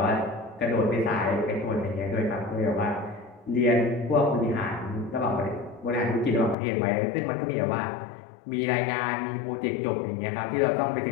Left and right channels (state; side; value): drops out; right; at 6.6 s